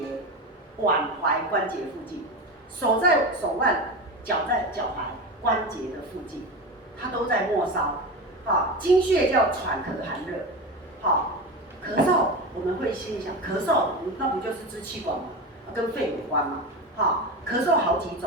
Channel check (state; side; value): normal; both; correlation 0.23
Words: 附近，手在手腕，脚在脚踝关节的附近，它都在末梢。好，经穴叫喘咳寒热。好，咳嗽我们会心里想，咳嗽那不就是支气管吗？跟肺有关吗？好，咳嗽好几